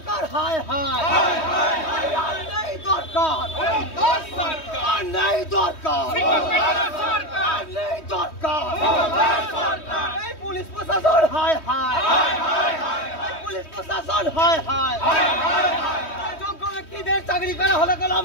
हाय हाय नहीं दरकार नहीं दरकार नहीं दरकार पुलिस प्रशासन हाय हाय पुलिस प्रशासन हाय हाय যোগ্য ব্যক্তিদের চাকরি করা হলে গেল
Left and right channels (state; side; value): late; right; 3.2 ms